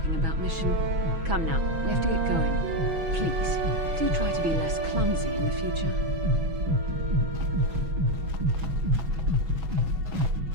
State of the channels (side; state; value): left; late; 6.1 ms